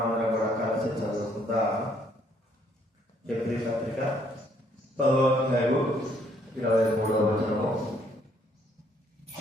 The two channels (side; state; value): both; normal; correlation 0.67